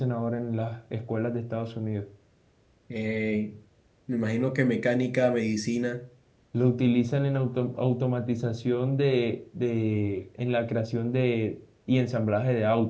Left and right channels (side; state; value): both; identical; correlation 1.00